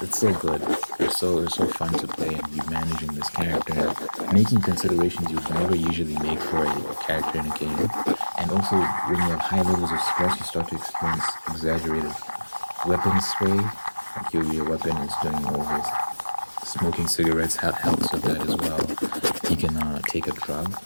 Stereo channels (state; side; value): inverted; both; correlation -1.00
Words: so good. It's so fun to play and be managing this character and making considerations you would never usually make for a character in a game. And also, when you have high levels of stress, you start to experience exaggerated weapon sway. Like your weapon is doing all this. Smoking cigarettes helps with that as well. You can take a drug.